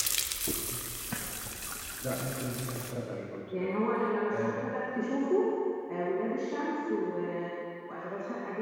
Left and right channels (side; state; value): both; identical; correlation 1.00